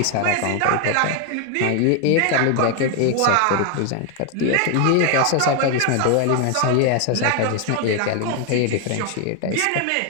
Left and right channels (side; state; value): both; different; correlation 0.01